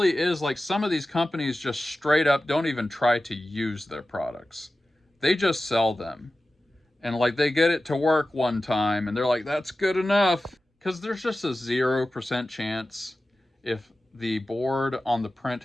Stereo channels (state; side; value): normal; both; correlation 0.95